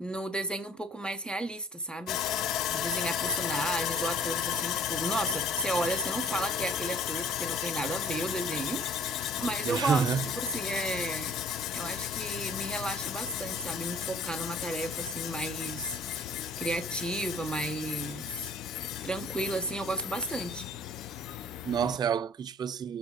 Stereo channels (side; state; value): both; normal; correlation 0.54